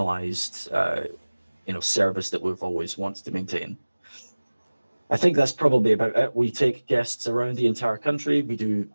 service that we've always wanted to maintain. I think that's probably about it. We take guests around the entire country. We do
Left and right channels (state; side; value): inverted; both; correlation -1.00